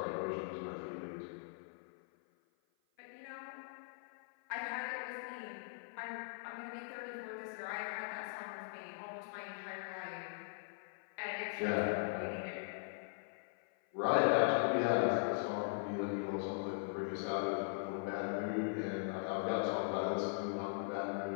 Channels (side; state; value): right; silent; 51 dB below the other